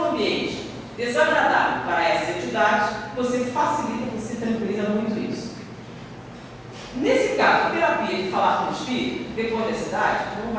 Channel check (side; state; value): both; identical; correlation 1.00